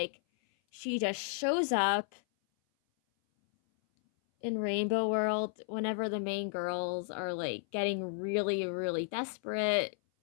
she just shows up in Rainbow World whenever the main girls are, like, getting really, really desperate.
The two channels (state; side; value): silent; right; 56 dB below the other